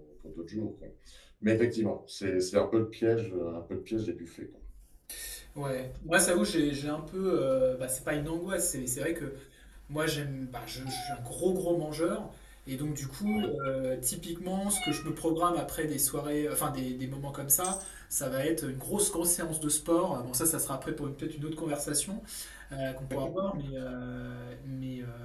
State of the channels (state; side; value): identical; both; correlation 1.00